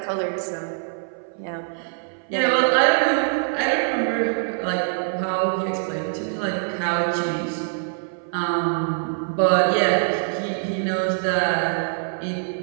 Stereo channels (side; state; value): left; silent; 57 dB below the other